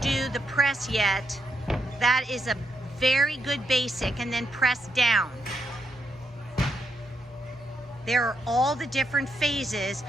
do the press yet, that is a very good basic, and then press down. There are all the different phases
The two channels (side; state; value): both; normal; correlation 0.81